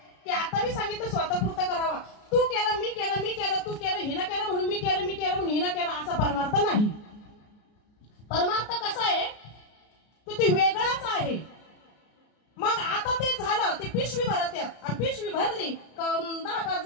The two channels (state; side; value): late; right; 33 ms